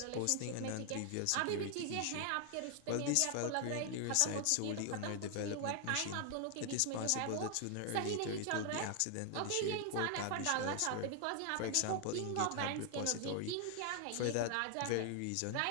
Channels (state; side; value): different; both; correlation 0.00